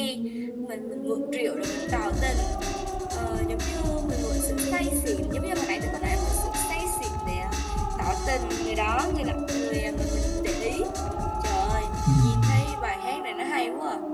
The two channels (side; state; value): both; identical; correlation 1.00